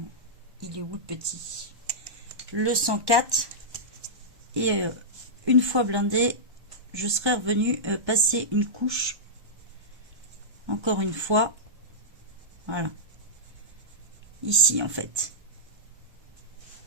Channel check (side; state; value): left; late; 1.2 ms